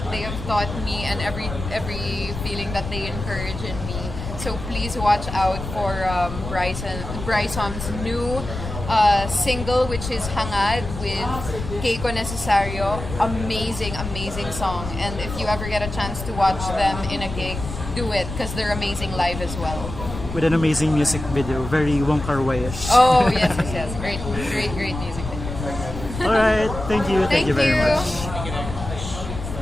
they have taught me and every feeling that they encourage in me. So please watch out for Bryson's new single, which is Hangad with Keiko Necesario. Amazing song. And if you ever get a chance to watch them in a gig, do it because they're amazing live as well. With an amazing music video, very Wong Kar-wai-ish. Oh yes, great music video. Alright, thank you very much.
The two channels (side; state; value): left; noise; rumble, 8 dB below the sound